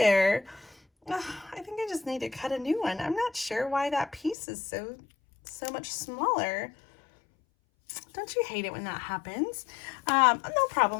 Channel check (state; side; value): drops out; right; at 4.4 s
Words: I think I just need to cut a new one. I'm not sure why that piece is so much smaller. Don't you hate it when that happens? No